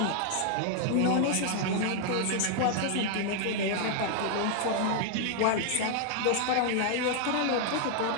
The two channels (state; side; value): different; both; correlation 0.00